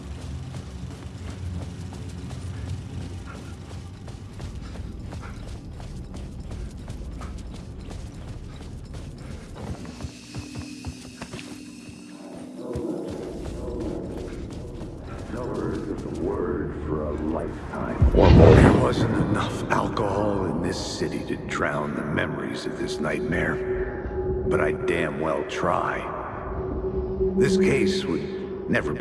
There wasn't enough alcohol in this city to drown the memories of this nightmare, but I'd damn well try. This case would never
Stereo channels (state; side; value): identical; both; correlation 1.00